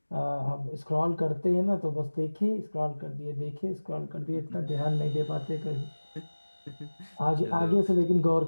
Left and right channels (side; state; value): both; inverted; correlation -1.00